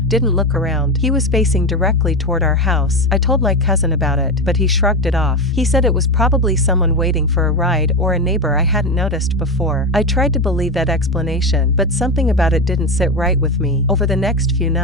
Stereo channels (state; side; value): normal; both; correlation 0.16